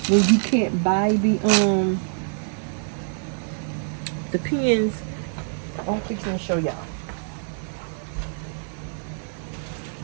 when you can't buy the pins. I'm fixing to show y'all.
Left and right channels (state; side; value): silent; left; 62 dB below the other